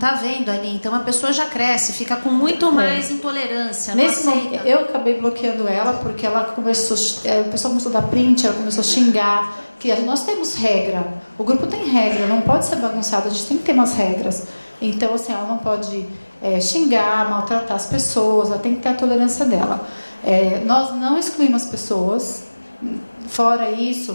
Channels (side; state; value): both; inverted; correlation -1.00